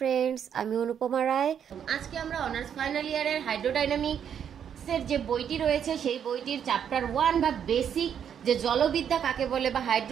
আমি অনুপমা রায়। আজকে আমরা অনার্স ফাইনাল ইয়ারের হাইড্রোডাইনামিক্সের যে বইটি রয়েছে সেই বইটির চ্যাপ্টার 1 বা বেসিক যে জলবিদ্যা কাকে বলে বা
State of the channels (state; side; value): quieter; left; 8.5 dB